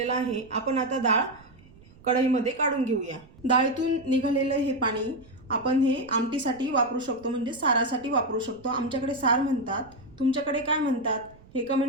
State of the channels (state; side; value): noise; right; rumble, 25 dB below the sound